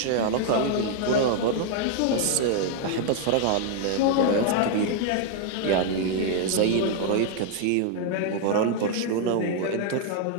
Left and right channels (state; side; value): different; both; correlation 0.00